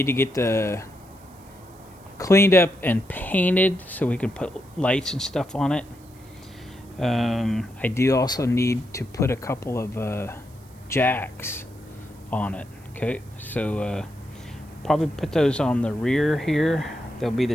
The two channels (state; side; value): noise; right; hiss, 28 dB below the sound